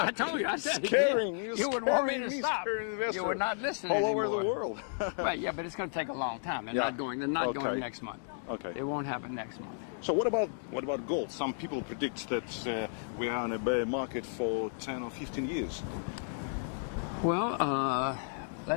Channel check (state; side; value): silent; right; digital silence